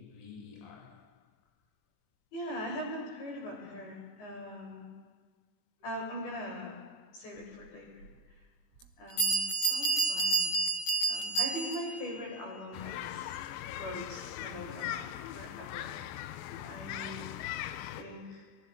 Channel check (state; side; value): late; right; 24 ms